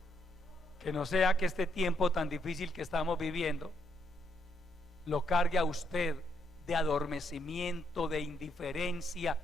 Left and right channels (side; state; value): both; normal; correlation 0.76